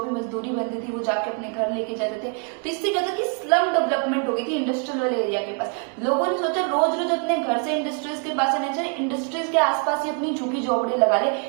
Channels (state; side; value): quieter; left; 37.8 dB